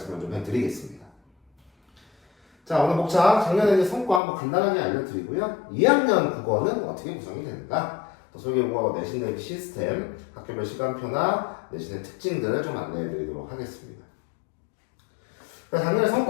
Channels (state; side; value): drops out; right; at 4.2 s